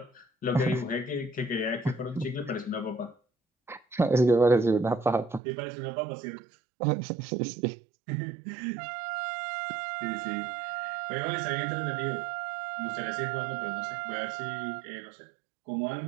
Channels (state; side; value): drops out; left; at 5.4 s